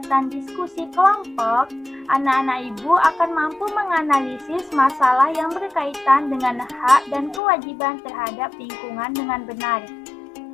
diskusi kelompok, anak-anak Ibu akan mampu menganalisis masalah yang berkaitan dengan hak dan kewajiban terhadap lingkungan dengan benar.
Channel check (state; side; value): drops out; right; at 7.4 s